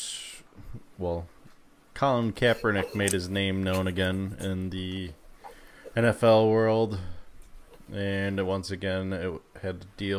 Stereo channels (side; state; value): both; identical; correlation 1.00